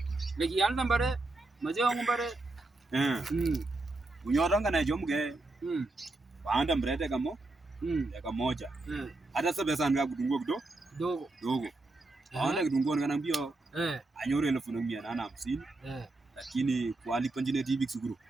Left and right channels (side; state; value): left; quieter; 3.0 dB